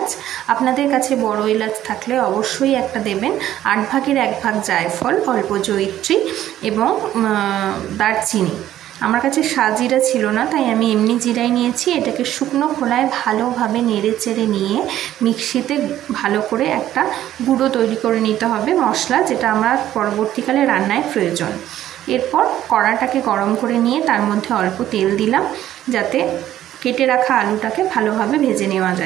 আপনাদের কাছে বড় এলাচ থাকলে অবশ্যই একটা দেবেন। 8 ভাগের 1 ভাগ জায়ফল, অল্প জয়িত্রী এবং দারচিনি। আমার কাছে সাজিরা ছিল না, তাই আমি এমনি জিরাই নিয়েছি। এটাকে শুকনো খোলায় ভালোভাবে নেড়ে চেড়ে নিয়ে মিক্সিতে ভালো করে একটা গুঁড়ো তৈরি করে নিতে হবে মশলা, যেটা আমার পরবর্তীকালে রান্নায় প্রয়োজন। এরপর কড়াটাকে গরম করে নিয়ে তার মধ্যে অল্প তেল দিলাম, যাতে কেটে রাখা আলুটাকে ভালোভাবে ভেজে নেওয়া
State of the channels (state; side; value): quieter; left; 12.6 dB